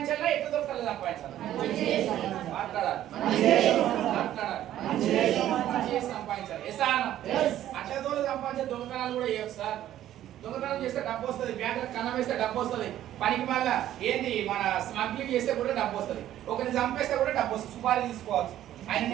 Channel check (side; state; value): left; quieter; 12.4 dB